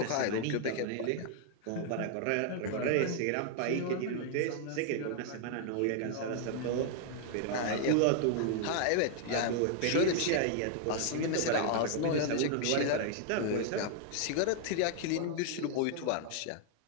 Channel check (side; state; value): both; different; correlation 0.00